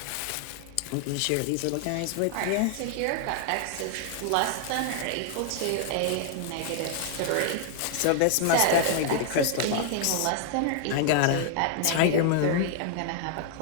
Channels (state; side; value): different; both; correlation 0.00